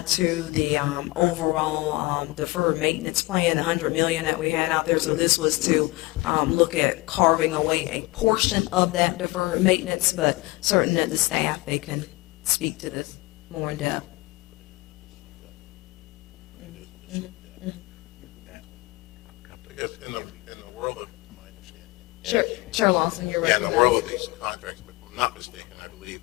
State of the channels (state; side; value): quieter; right; 22.5 dB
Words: to the overall deferred maintenance plan, the $100 million that we had out there. So this was to look at carving away a portion of that deferred maintenance, but certain that the staff, they can speak to this more in depth. I guess in the world of my understanding. Chair Lawson, you're Yeah, right. in the world of these contracts, if I'm not mistaken, I believe